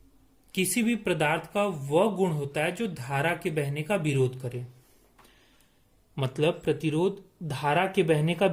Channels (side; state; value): both; identical; correlation 1.00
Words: किसी भी पदार्थ का वह गुण होता है जो धारा के बहने का विरोध करे। मतलब प्रतिरोध धारा के बहने का